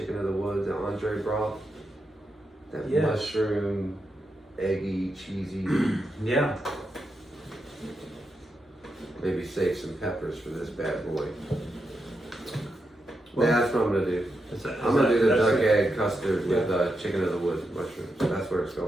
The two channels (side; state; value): both; normal; correlation 0.86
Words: of the woods and entree broth. That Yes. mushroom, eggy, cheesy. Yeah. Maybe save some peppers for this bad boy. Well, That's what I'm gonna do. I'm gonna do the duck egg custard with chicken of the woods mushrooms. That's where it's